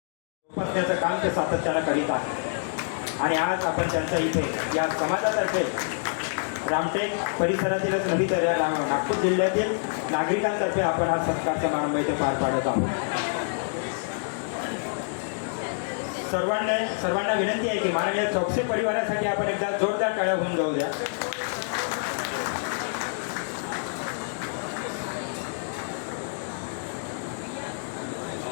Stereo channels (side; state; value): right; silent; digital silence